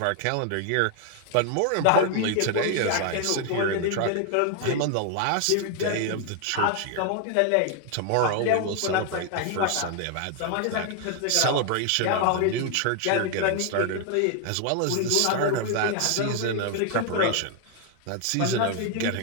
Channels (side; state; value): both; different; correlation 0.00